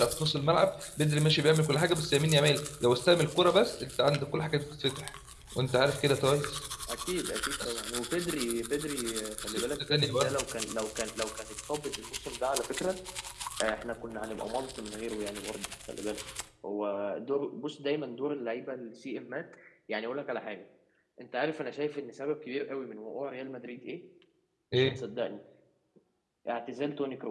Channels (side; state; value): both; identical; correlation 1.00